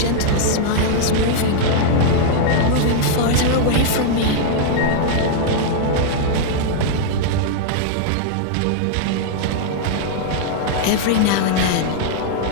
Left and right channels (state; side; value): different; both; correlation -0.01